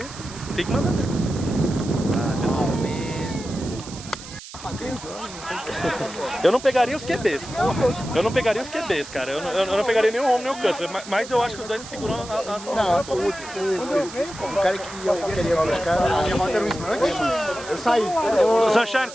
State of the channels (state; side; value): noise; right; hiss, 15 dB below the sound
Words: que mandar. Eu não pegaria os QBs. Cara. Eu não pegaria nem o home nem o Cutler. Mas eu acho que os dois seguram as Não, o cara que eu queria buscar, a minha rota era um snatch, eu saí.